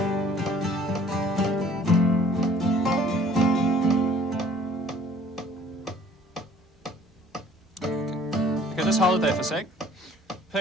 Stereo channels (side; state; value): both; normal; correlation 0.54